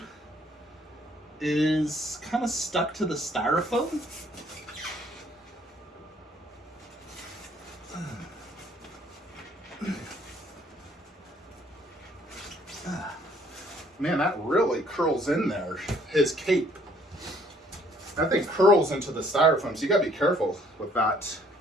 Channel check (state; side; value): normal; both; correlation 0.62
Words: is kind of stuck to the styrofoam. Man, that really curls in there. His cape. That thing curls into the styrofoam, so you gotta be careful with that.